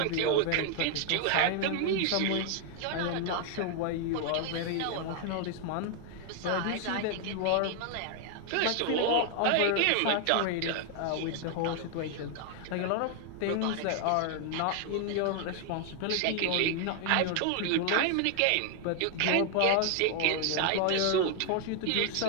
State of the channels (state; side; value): different; both; correlation 0.00